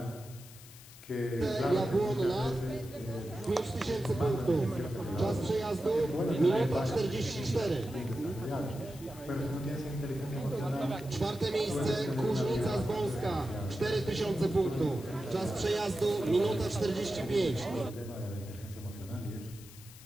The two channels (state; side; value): noise; left; hiss, 19 dB below the sound